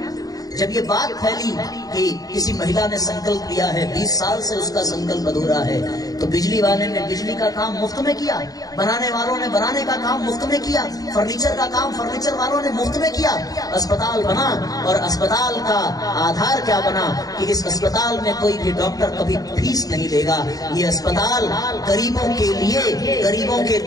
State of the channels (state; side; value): late; right; 0.18 ms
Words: जब ये बात फैली कि किसी महिला ने संकल्प लिया है, 20 साल से उसका संकल्प अधूरा है, तो बिजली वाले ने बिजली का काम मुफ्त में किया, बनाने वालों ने बनाने का काम मुफ्त में किया, फर्नीचर का काम फर्नीचर वालों ने मुफ्त में किया। अस्पताल बना, और अस्पताल का आधार क्या बना कि इस अस्पताल में कोई भी डॉक्टर कभी फीस नहीं लेगा। ये अस्पताल गरीबों के लिए, गरीबों के